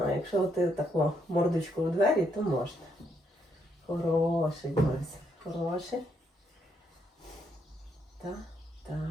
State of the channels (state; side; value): normal; both; correlation 0.75